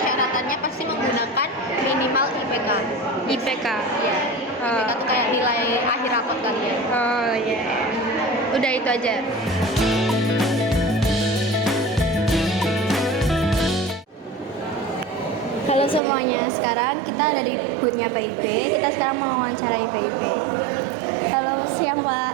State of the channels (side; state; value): left; drops out; at 16.0 s